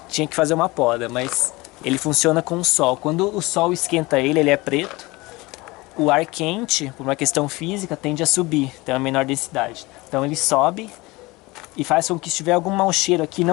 tinha que fazer uma poda, mas ele funciona com o sol. Quando o sol esquenta ele é preto. O ar quente, por uma questão física, tende a subir, tem uma menor densidade. Então ele sobe e faz com que se tiver algum mau cheiro aqui,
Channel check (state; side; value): quieter; right; 22.2 dB